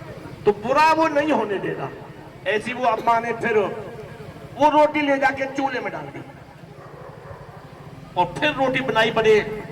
तो बुरा वो नहीं होने देगा। ऐसी वो अम्मा ने फिर वो रोटी ले जाके चूल्हे में डाल दी, और फिर रोटी बनाई बड़े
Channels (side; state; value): both; identical; correlation 1.00